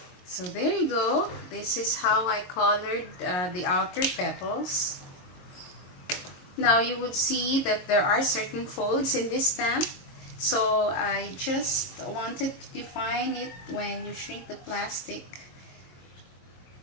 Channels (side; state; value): right; late; 22 ms